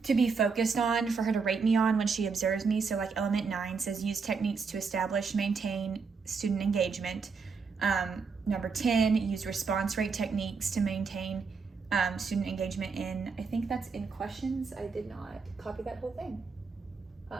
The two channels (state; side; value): quieter; left; 5.1 dB